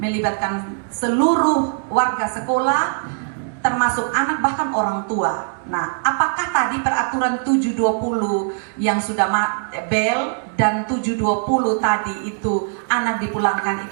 melibatkan seluruh warga sekolah, termasuk anak bahkan orang tua. Nah, apakah tadi peraturan 720 yang sudah bel dan 720 tadi itu anak dipulangkan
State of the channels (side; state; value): left; silent; digital silence